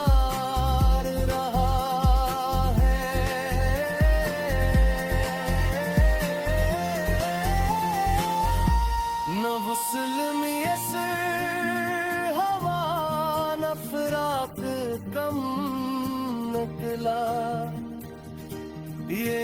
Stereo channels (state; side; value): identical; both; correlation 1.00